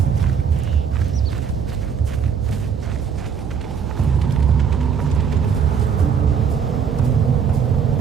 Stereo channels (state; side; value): quieter; left; 6.8 dB